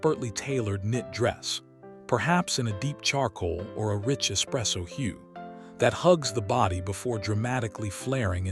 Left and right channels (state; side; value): identical; both; correlation 1.00